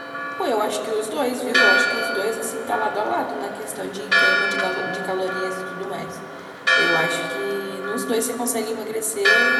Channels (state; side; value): identical; both; correlation 1.00